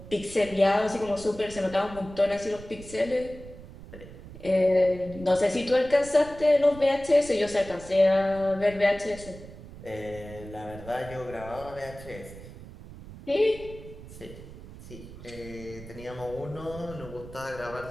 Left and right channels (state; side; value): noise; right; rumble, 15 dB below the sound